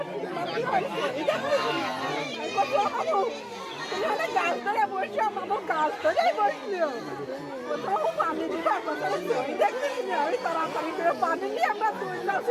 গাছ ধরে বসে আমার গাছ ধরে বসলো কোথাও পানি দিতে দেখতেছি আমি তাড়াতাড়ি করে পানি নিয়ে আমরা তুললাম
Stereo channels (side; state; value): both; identical; correlation 1.00